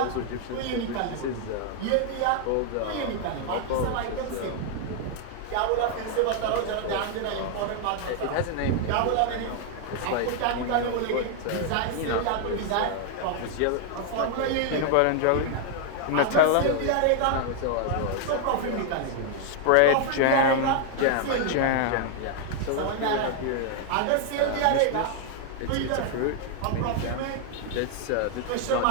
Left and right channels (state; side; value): different; both; correlation 0.00